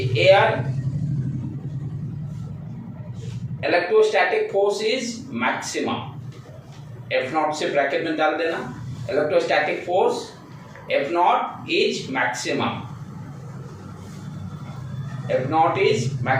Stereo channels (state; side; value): identical; both; correlation 1.00